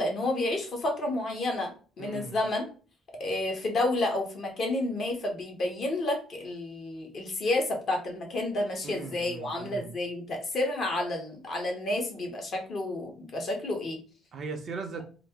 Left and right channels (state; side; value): normal; both; correlation 0.72